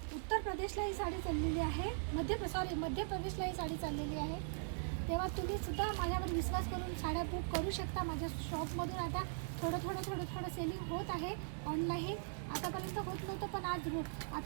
उत्तर प्रदेशला ही साडी चाललेली आहे, मध्य प्रदेशला ही साडी चाललेली आहे. तेव्हा तुम्ही सुद्धा माझ्यावर विश्वास करून साड्या बुक करू शकता. माझ्या शॉपमधून आता थोडं सेलिंग होत आहे ऑनलाईन. आतापर्यंत होत नव्हतं पण आज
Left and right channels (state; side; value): silent; left; digital silence